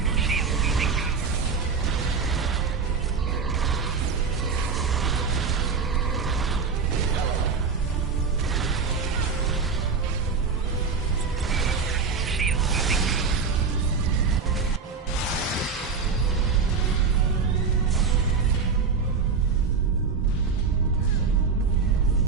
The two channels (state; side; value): quieter; left; 5.2 dB